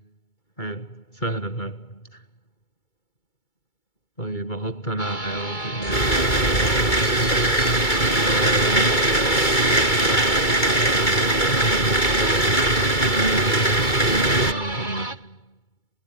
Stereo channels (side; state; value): right; late; 2.3 ms